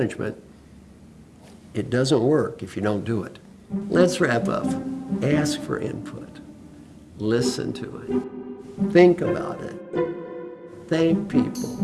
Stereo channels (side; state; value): both; identical; correlation 1.00